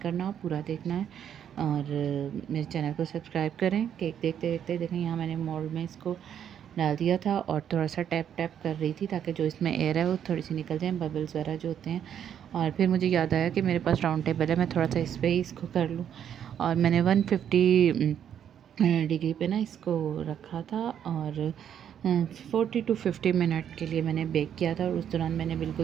पूरा देखना है। और मेरे चैनल को सब्सक्राइब करें। केक देखते देखते देखें, यहाँ मैंने मोल्ड में इसको डाल दिया था, और थोड़ा सा टैप टैप कर रही थी ताकि जो इसमें एयर है वो थोड़ी सी निकल जाए, बबल्स वगैरह जो होते हैं। और फिर मुझे याद आया कि मेरे पास राउंड टेबल है, मैं थोड़ा सा इस पर ही इसको कर लूँ। और मैंने 150 डिग्री पे ना इसको रखा था, और 40 to 50 मिनट के लिए मैंने बेक किया था। और उस दौरान मैंने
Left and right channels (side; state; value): left; quieter; 9.2 dB